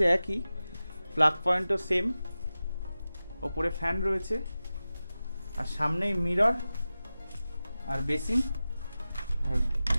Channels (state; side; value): inverted; both; correlation -0.95